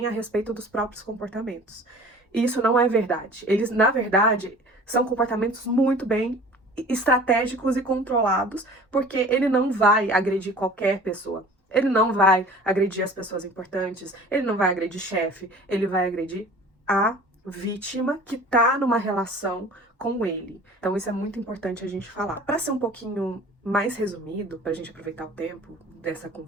a respeito dos próprios comportamentos. E isso não é verdade. Eles, na verdade, são comportamentos muito bem estratégicos e controlados, porque ele não vai agredir qualquer pessoa. Ele não vai agredir as pessoas importantes, ele não vai agredir chefe, ele vai agredir a vítima que tá numa relação com ele. Então isso é muito importante a gente falar. Para ser um pouquinho mais resumido, para a gente aproveitar o tempo dessa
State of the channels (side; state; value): both; normal; correlation 0.44